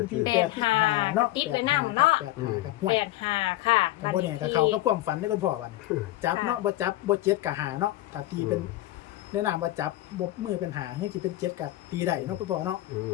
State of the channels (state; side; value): quieter; right; 16.3 dB